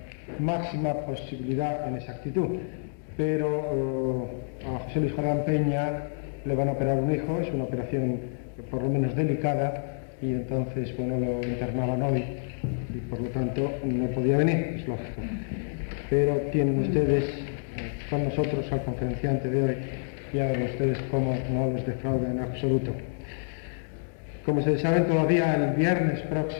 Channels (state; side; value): silent; right; digital silence